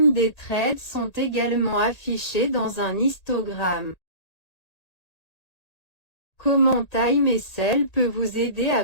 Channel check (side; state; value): right; late; 1.8 ms